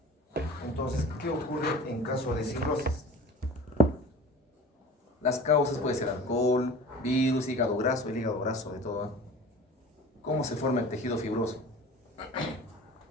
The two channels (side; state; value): both; normal; correlation 0.41